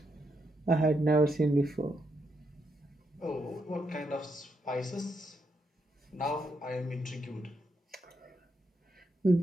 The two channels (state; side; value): normal; both; correlation 0.81